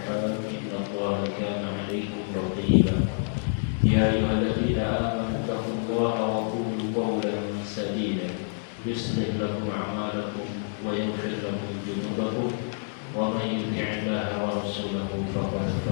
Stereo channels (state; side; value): silent; right; digital silence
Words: إن الله كان عليكم رقيبا يا أيها الذين آمنوا اتقوا الله وقولوا قولا سديدا يصلح لكم أعمالكم ويغفر لكم ذنوبكم ومن يطع الله ورسوله فقد